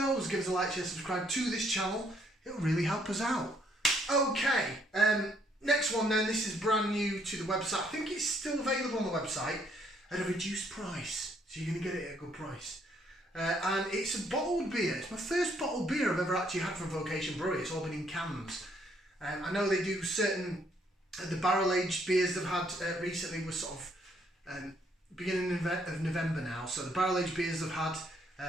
Give us a like, share, subscribe to this channel. It'll really help us out. Okay, next one then. This is brand new to the website. I think it's still available on the website at a reduced price. So you're going to get it at a good price. And it's a bottled beer. It's my first bottled beer I've ever actually had from Vocation Brewery. It's all been in cans. I know they do certain... the barrel-aged beers they've had recently was sort of beginning of November now. So the barrel-aged beers they've had,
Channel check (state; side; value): normal; both; correlation 0.68